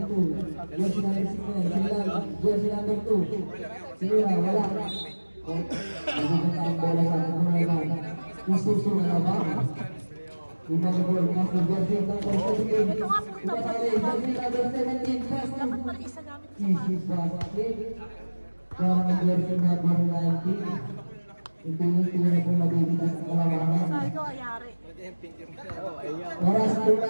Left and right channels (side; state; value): both; inverted; correlation -1.00